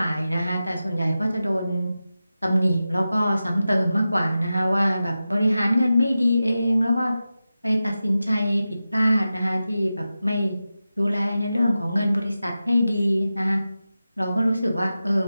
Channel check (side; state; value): both; inverted; correlation -0.93